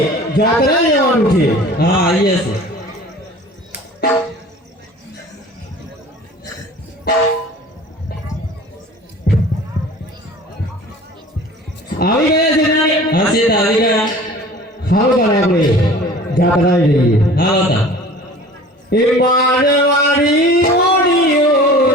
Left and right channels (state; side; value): normal; both; correlation 0.44